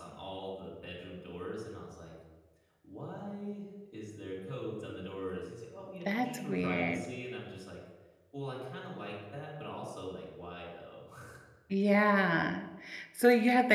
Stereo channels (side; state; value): both; identical; correlation 1.00